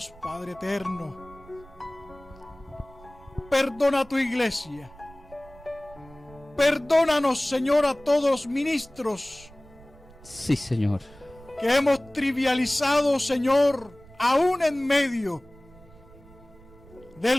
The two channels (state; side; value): noise; right; rumble, 23 dB below the sound